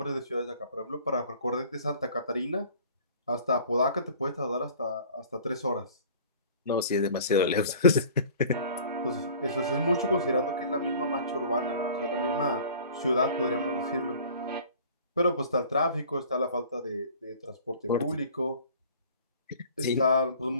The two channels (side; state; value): both; inverted; correlation -0.47